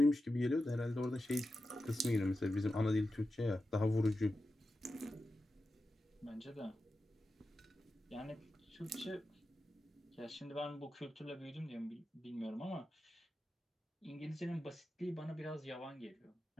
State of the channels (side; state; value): both; normal; correlation 0.91